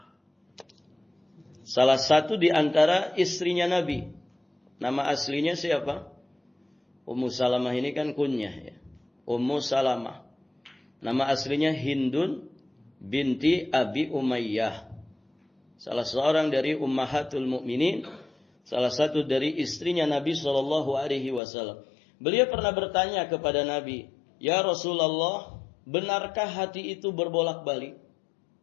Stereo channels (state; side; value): drops out; right; at 21.4 s